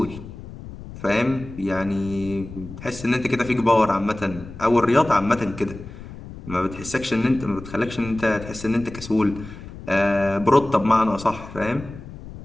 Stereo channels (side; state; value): left; noise; rumble, 14 dB below the sound